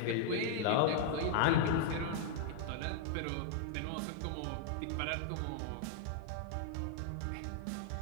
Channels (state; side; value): different; both; correlation -0.01